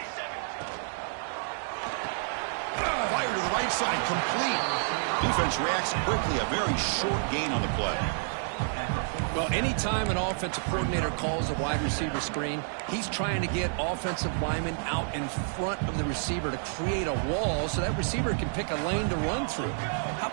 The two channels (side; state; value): left; silent; digital silence